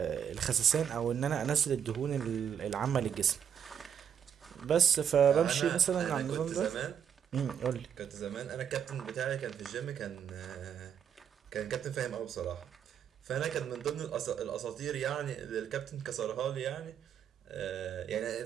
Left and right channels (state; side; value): quieter; left; 8.4 dB